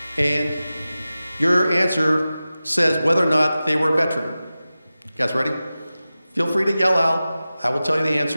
and your answer says whether or not they were a veteran. You guys ready? Feel free to yell out. I will tell you the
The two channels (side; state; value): both; inverted; correlation -0.95